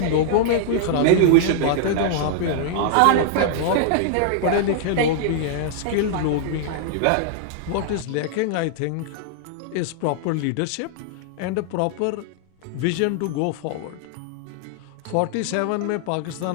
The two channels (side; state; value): both; different; correlation -0.01